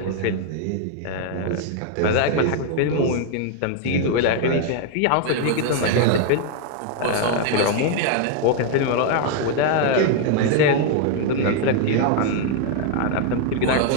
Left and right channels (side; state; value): both; different; correlation 0.00